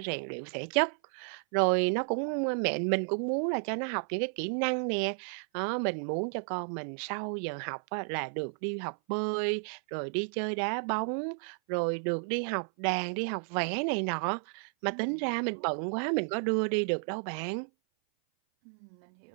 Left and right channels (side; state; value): left; silent; 56 dB below the other